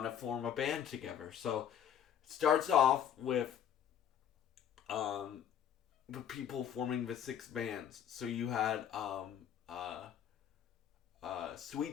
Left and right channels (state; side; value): quieter; right; 9.3 dB